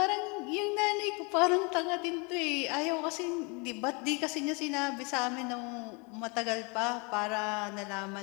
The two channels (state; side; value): quieter; right; 30.6 dB